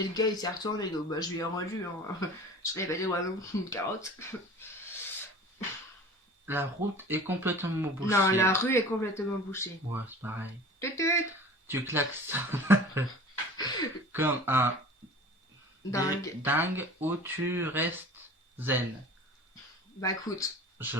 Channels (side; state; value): both; normal; correlation 0.41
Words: le gars il s'est retourné, donc bah je lui ai rendu. Hein. Je l'ai pas dit, ouais, non, une carotte. La route est complètement bouchée. Non, la rue est complètement bouchée. Ouais, c'est pareil. Tut. Tu klaxonnes comme un dingue ou tu restes zen. Bah écoute, Je